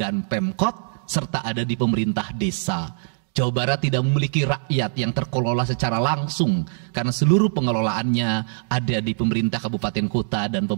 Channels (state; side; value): silent; left; digital silence